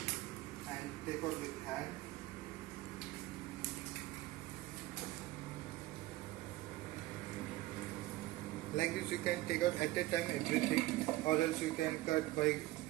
and take out with hand. Like this you can take out at a time everything, or else you can cut by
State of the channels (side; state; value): left; quieter; 17.7 dB